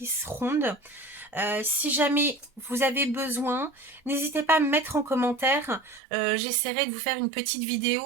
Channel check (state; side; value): drops out; left; at 6.0 s